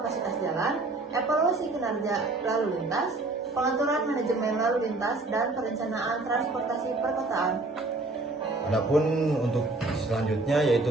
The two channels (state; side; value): quieter; left; 3.2 dB